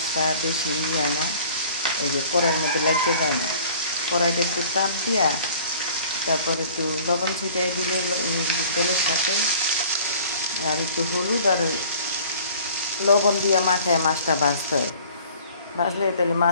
বেশি হয় না, এই যে কড়াইয়ের মধ্যে লাগিয়ে যায় না। কড়াইটা একটু তাপ দিয়া তারপর একটু লবণ ছিটাই দিলে তেলের সাথে, আর একটু হলুদ আর লবণ দিয়ে মাখায় মাছটা ভাজতে হয়। ভাজলে তাহলে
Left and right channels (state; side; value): inverted; both; correlation -0.50